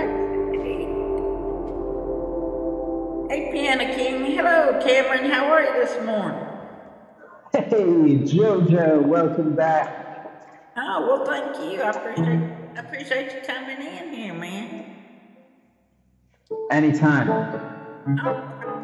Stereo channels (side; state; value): both; identical; correlation 1.00